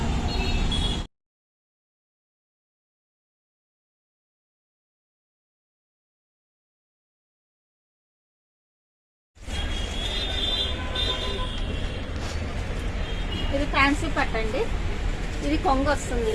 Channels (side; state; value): both; identical; correlation 1.00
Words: ఇది ఫ్యాన్సీ పట్టు అండి. ఇది కొంగు వస్తుంది